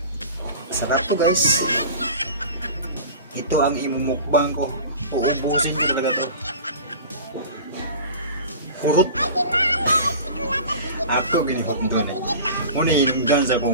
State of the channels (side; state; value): both; inverted; correlation -0.37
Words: Sarap to guys. Ito ang imumukbang ko. Uubusin ko talaga to. Hurot. Ako ginihot doon eh. Muna hinunggan sa